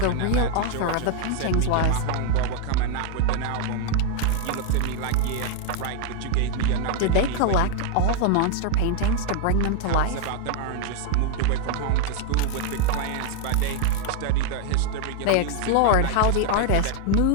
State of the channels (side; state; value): both; different; correlation 0.00